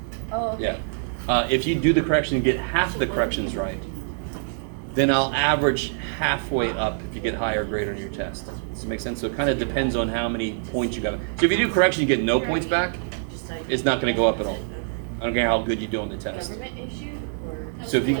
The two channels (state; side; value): silent; left; digital silence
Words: Oh, okay. Yeah. If you do the correction and get half the corrections right, then I'll average halfway up if you get higher grade on your test. Does that make sense? So it kind of depends on how many points you got. So if you do correction, you get no points back, it's not going to go up at all. I don't care how good you do on the test. So if you